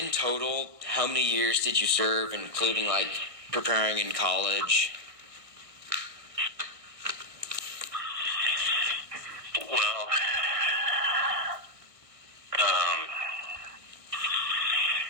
total, how many years did you serve, including like preparing in college? Well,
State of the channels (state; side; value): late; left; 1.6 ms